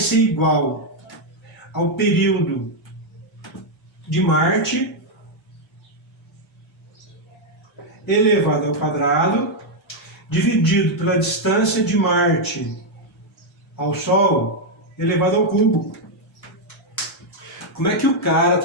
igual ao período de Marte elevado ao quadrado dividido pela distância de Marte ao Sol elevado ao cubo. Como é que o cara,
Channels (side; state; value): both; normal; correlation 0.00